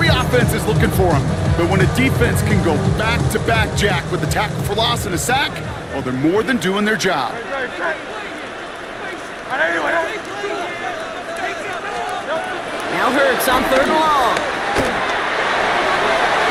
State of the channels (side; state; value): both; identical; correlation 1.00